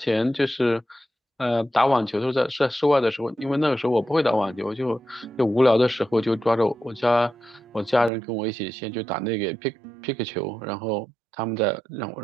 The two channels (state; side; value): drops out; left; at 8.1 s